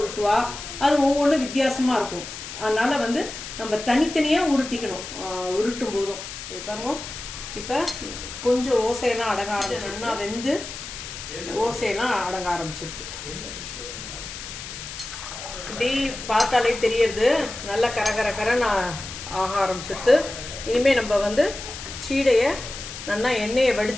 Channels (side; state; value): left; noise; hiss, 10 dB below the sound